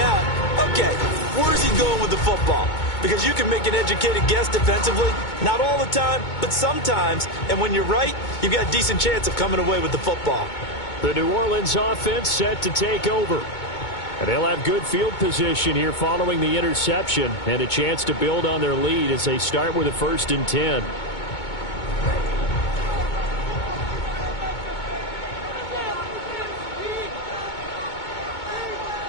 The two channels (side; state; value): right; late; 2.2 ms